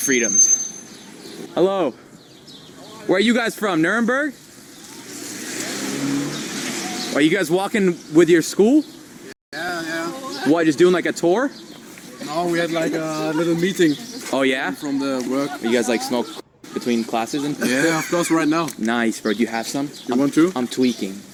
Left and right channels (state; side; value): identical; both; correlation 1.00